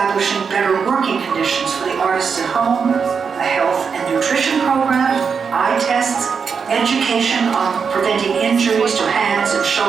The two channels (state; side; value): quieter; left; 6.0 dB